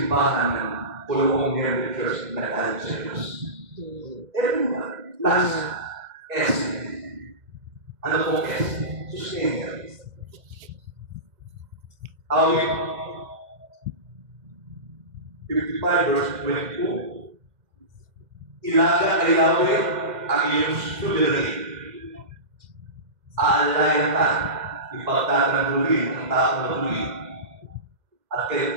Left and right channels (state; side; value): late; left; 2.1 ms